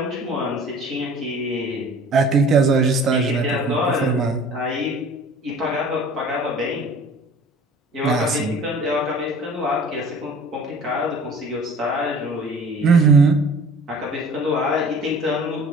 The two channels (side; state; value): both; normal; correlation 0.47